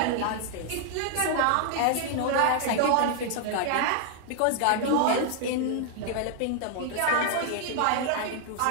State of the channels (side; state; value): both; different; correlation 0.00